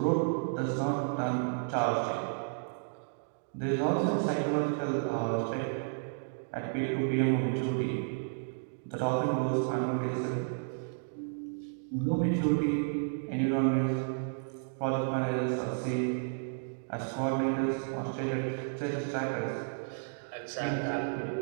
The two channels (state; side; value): silent; left; digital silence